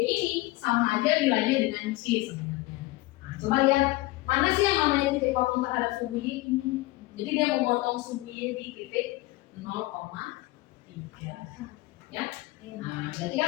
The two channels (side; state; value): right; quieter; 20.1 dB